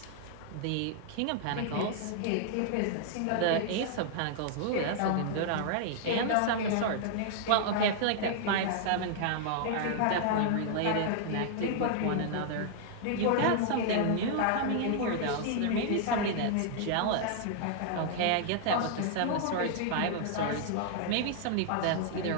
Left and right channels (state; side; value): different; both; correlation -0.01